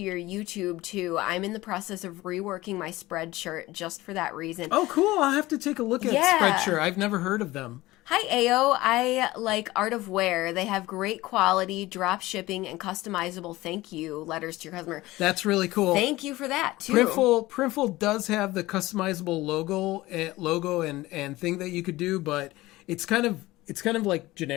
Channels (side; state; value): right; quieter; 18.5 dB